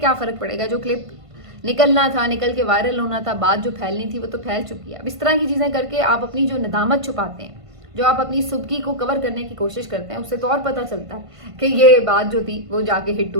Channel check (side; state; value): left; late; 1.5 ms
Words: فرق پڑے گا, جو کلپ نکلنا تھا نکل کے وائرل ہونا تھا, بات جو پھیلنی تھی وہ تو پھیل چکی ہے. اب اس طرح کی چیزیں کر کے آپ اپنی جو ندامت چھپاتے ہیں, جو آپ اپنی سبکی کو کور کرنے کی کوشش کرتے ہیں, اس سے تو اور پتہ چلتا ہے کہ یہ بات جو تھی وہ جا کے ہٹ